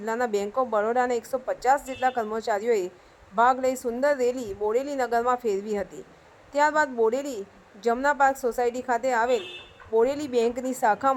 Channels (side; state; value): both; identical; correlation 1.00